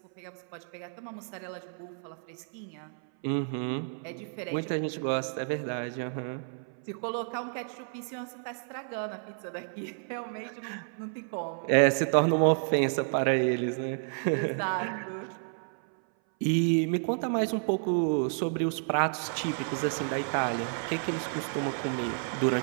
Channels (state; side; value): silent; left; 57 dB below the other